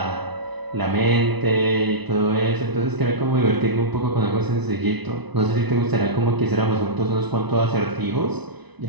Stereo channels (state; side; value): late; left; 1.0 ms